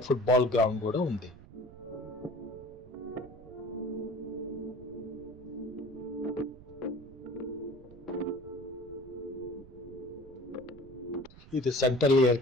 ఫుట్బాల్ గ్రౌండ్ కూడా ఉంది. ఇది సెంట్రల్ ఎయిర్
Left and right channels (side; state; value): right; noise; rumble, 19 dB below the sound